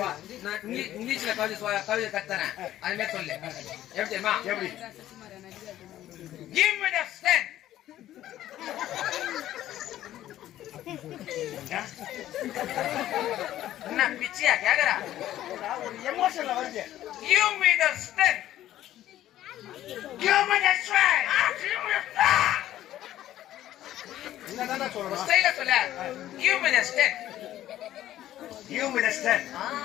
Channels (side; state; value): right; quieter; 13.2 dB